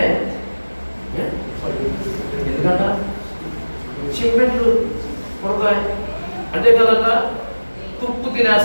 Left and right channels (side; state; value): both; inverted; correlation -1.00